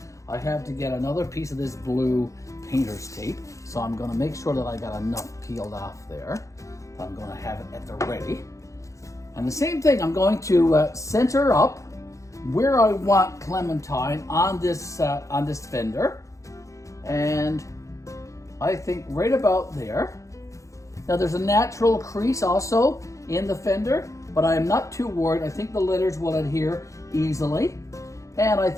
I have to get another piece of this blue painter's tape, so I'm going to make sure that I got enough peeled off there. I'm going to have it at the ready. And the same thing, I'm going to center up where I want Clementine on this fender, and I think right about there. Now there's a natural crease also in the fender, but I am not too worried. I think the letters will adhere easily, and I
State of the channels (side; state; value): right; late; 0.15 ms